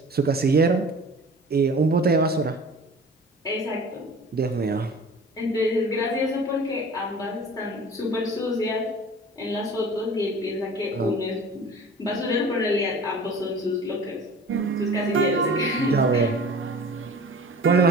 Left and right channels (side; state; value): both; normal; correlation 0.43